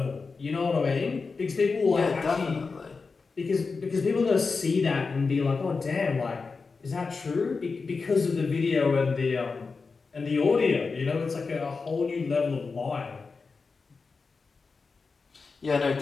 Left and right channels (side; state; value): right; quieter; 4.5 dB